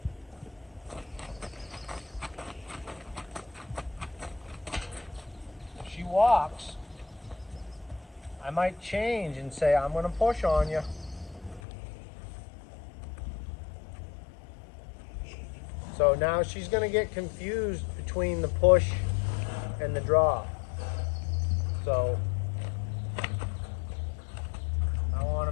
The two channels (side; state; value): right; drops out; at 11.6 s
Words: If she walks, I might change and say, I'm going to push on you. So now she's going to get confused between the push and the draw. So I want